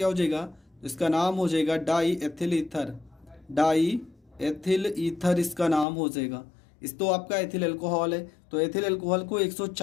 हो जाएगा? इसका नाम हो जाएगा die ethyl ether, die ethyl ether इसका नाम हो जाएगा। इस तो आपका एथिल एल्कोहल है, तो एथिल एल्कोहल को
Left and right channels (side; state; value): right; drops out; at 5.9 s